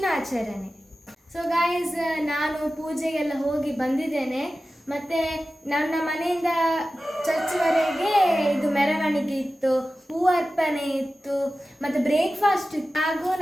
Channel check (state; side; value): normal; both; correlation 0.95